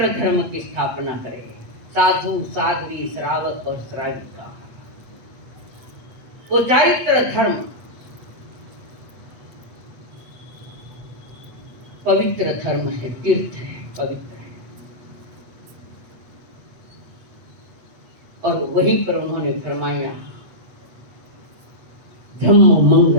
धर्म की स्थापना करे साधु साध्वी श्रावक और श्राविका वो चारित्र धर्म पवित्र धर्म है तीर्थ है पवित्र है और वहीं पर उन्होंने फरमाया धम्म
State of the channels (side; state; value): left; late; 8.3 ms